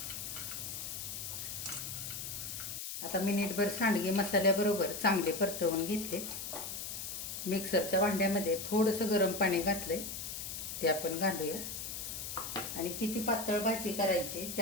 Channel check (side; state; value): left; noise; hiss, 6 dB below the sound